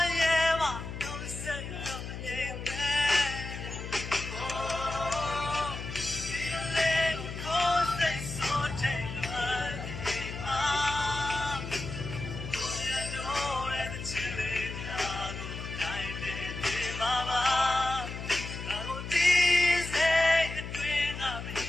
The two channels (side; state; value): left; noise; hum, 8 dB below the sound